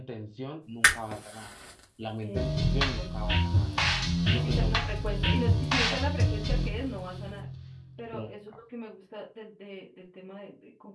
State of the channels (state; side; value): identical; both; correlation 1.00